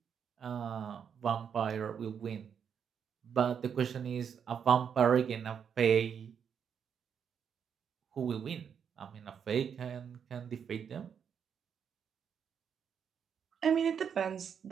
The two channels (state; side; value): quieter; left; 7.5 dB